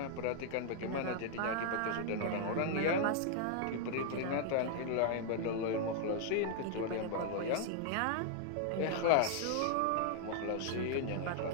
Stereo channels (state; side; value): different; both; correlation 0.00